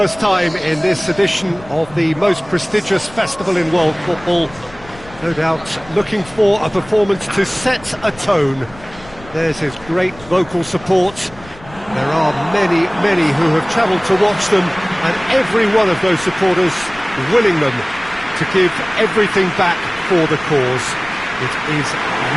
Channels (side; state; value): left; noise; rumble, 20 dB below the sound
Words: time in this edition of the most prestigious festival in world football. No doubt looking for a performance to set a tone. There's his great vocal support. There are many, many who have travelled to watch them, and every one of those supporters willing them to give everything back for the cause. It is